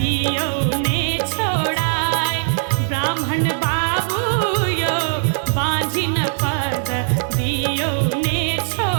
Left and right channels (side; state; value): left; silent; digital silence